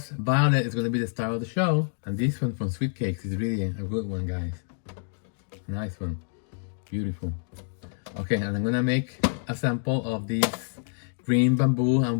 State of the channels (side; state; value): right; silent; 60 dB below the other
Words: violet is gonna be the star of the show. And this one from Sweet Cakes is really a good one, guys. Nice one, beautiful. Okay, and I'm gonna make a sample of this green bamboo and